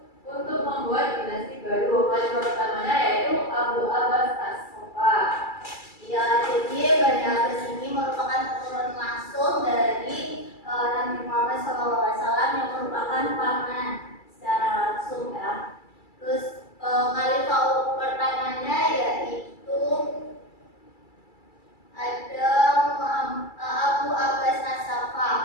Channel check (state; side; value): late; right; 2.3 ms